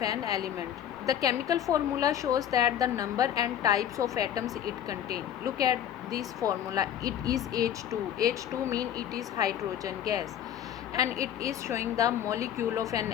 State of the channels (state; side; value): quieter; right; 10.1 dB